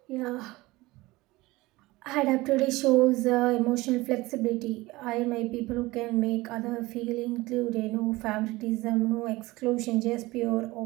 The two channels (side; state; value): left; quieter; 20.3 dB